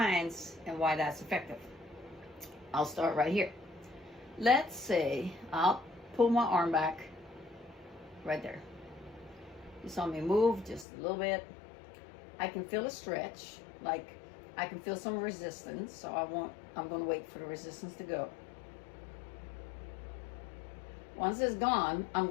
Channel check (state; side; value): drops out; right; at 10.9 s